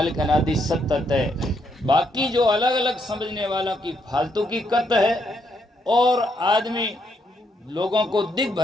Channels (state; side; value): normal; both; correlation 0.76